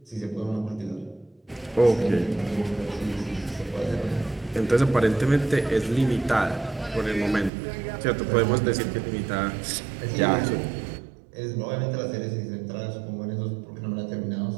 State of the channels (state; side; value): drops out; left; at 7.5 s